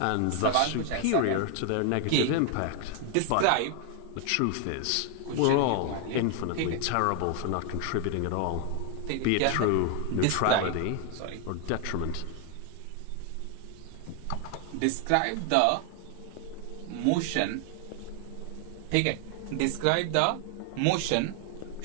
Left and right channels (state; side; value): different; both; correlation 0.00